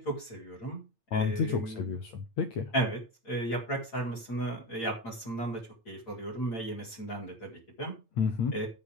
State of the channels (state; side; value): late; right; 8.7 ms